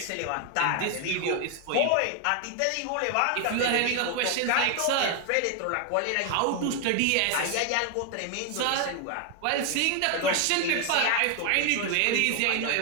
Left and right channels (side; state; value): both; different; correlation 0.01